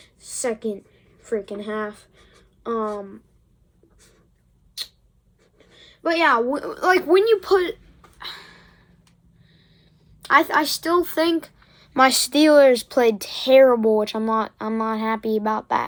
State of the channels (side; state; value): both; identical; correlation 1.00